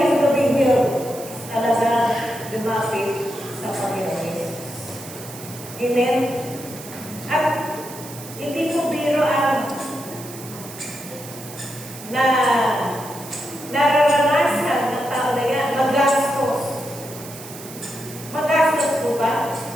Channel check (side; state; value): right; noise; hiss, 14 dB below the sound